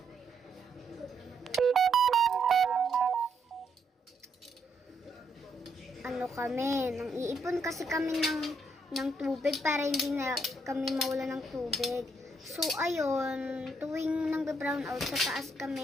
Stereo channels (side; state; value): both; normal; correlation 0.75